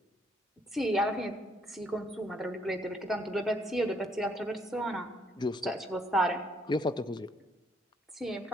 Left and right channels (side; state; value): both; normal; correlation 0.68